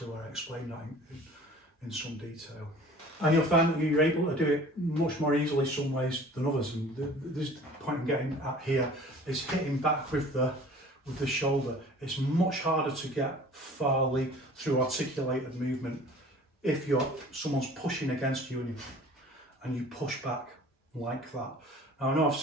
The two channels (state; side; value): normal; both; correlation 0.47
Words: where I explain that in some detail. And you'll find that you're able to do it much more easily some ways than others. And this point I'm getting at here is hitting back with the shoulder. It's much harder to get farly through articulated movement if someone's pushing against you and you push back like that. Now I know I've